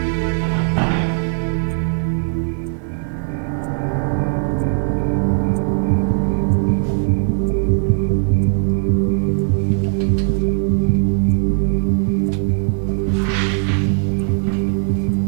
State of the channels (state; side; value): silent; left; 59 dB below the other